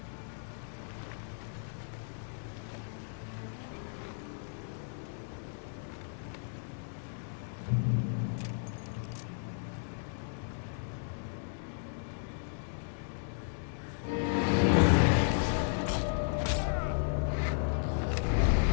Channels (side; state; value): right; silent; digital silence